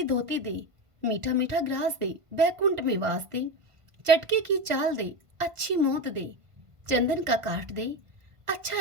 धोती दे, मीठा मीठा ग्रास दे, बैकुंठ में वास दे, चटके की चाल दे, अच्छी मौत दे, चंदन का काठ दे,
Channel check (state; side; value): late; left; 1.5 ms